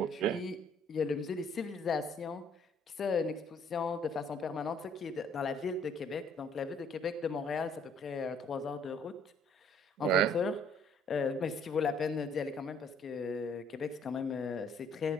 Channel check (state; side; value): normal; both; correlation 0.61